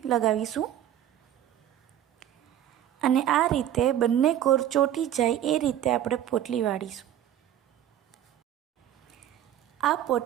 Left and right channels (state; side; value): quieter; left; 11.1 dB